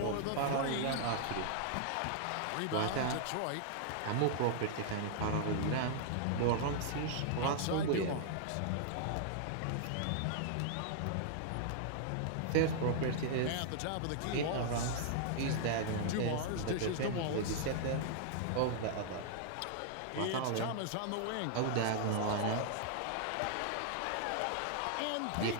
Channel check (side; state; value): both; different; correlation -0.01